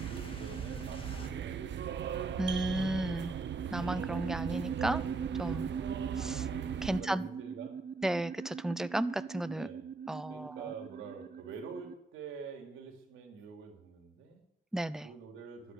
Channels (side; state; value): left; quieter; 3.4 dB